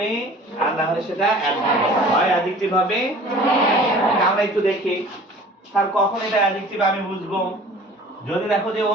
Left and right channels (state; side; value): normal; both; correlation 0.46